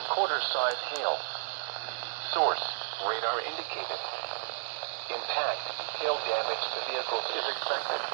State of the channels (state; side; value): silent; left; digital silence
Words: quarter-size hail. Source, radar indicated. Impact, hail damage to vehicles is expected.